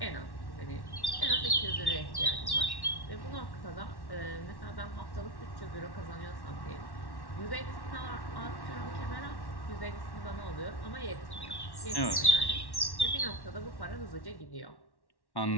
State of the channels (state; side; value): late; right; 1.1 ms